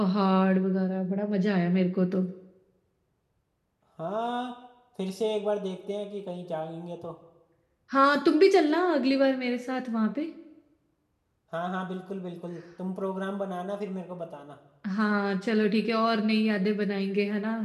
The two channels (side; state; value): both; identical; correlation 1.00